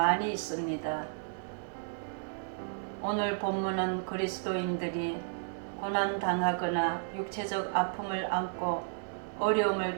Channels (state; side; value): silent; left; digital silence